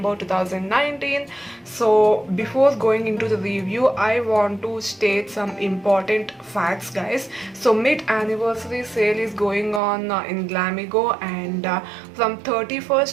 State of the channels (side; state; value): left; drops out; at 9.8 s